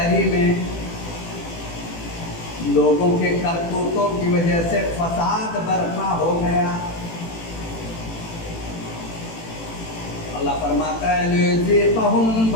میں لوگوں کے کرتوتوں کی وجہ سے فساد برپا ہو گیا. اللہ فرماتا ہے لِيُذِيقَهُمْ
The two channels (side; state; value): right; late; 18 ms